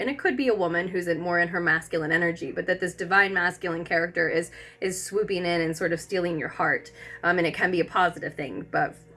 it could be a woman who's more in her masculine energy, but that this divine masculine character is swooping in and sort of stealing your heart. And it can be a positive thing, but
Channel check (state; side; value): identical; both; correlation 1.00